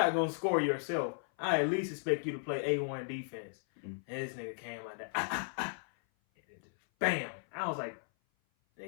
going to score yourself, I at least expect you to play A1 defense. And this nigga came like that. And it just, bam. I was like,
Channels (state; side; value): silent; right; 54 dB below the other